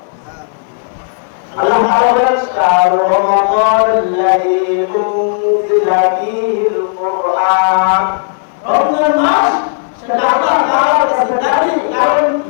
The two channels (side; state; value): right; silent; digital silence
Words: আল্লাহ তাআলা বলেন শাহরু রমাদানাল্লাযী উনজিলা ফীহিল কুরআন। রমজান মাস সেটা আল্লাহ তাআলার কাছে দাবি, কারণ